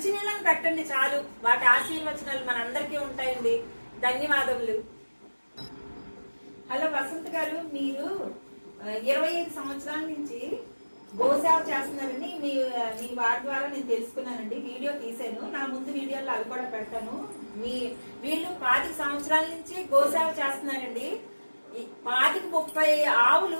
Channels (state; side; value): inverted; both; correlation -1.00